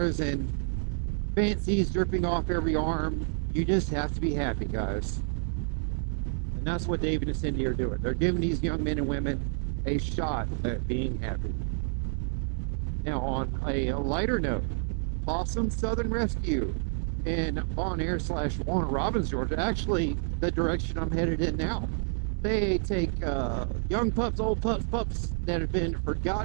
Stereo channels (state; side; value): silent; left; digital silence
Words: and fancies dripping off every arm. You just have to be happy, guys. And that's what David and Cindy are doing. They're giving these young men and women a shot at being happy. Now, on a lighter note, Possum Southern Rescue in Bon Air / Warner Robins, Georgia, actually the direction I'm headed in now. They take young pups, old pups that have been